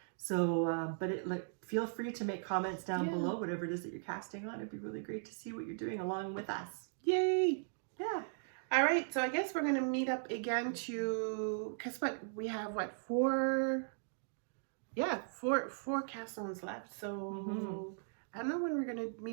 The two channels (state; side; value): silent; left; digital silence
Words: So, feel free to make comments down below, whatever it is that you're casting on. It'd be really great to see what you're doing along with us. Yay! Yeah. All right, so I guess we're going to meet up again to, guess what? We have, four Cast-Ons left. So I don't know when we're going to